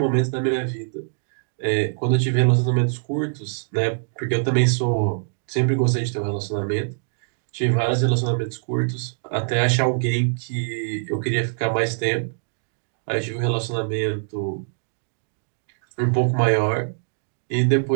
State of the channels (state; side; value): silent; left; digital silence